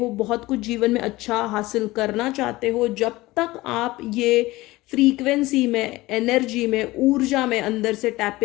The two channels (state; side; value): quieter; right; 19.3 dB